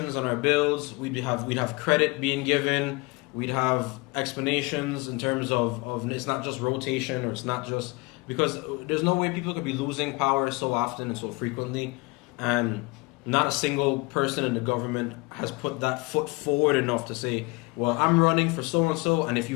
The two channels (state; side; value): quieter; right; 25.6 dB